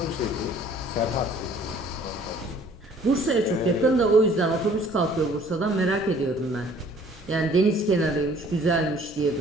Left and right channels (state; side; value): normal; both; correlation 0.55